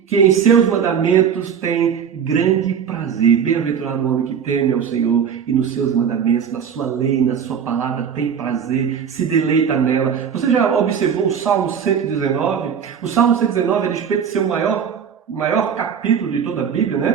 em seus mandamentos tem grande prazer. Bem-aventurado o homem que teme ao Senhor e nos seus mandamentos, na sua lei, na sua palavra tem prazer, se deleita nela. Você já observou o Salmo 119? O Salmo 119 é a respeito de ser o maior capítulo de toda a Bíblia,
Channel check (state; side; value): quieter; left; 7.5 dB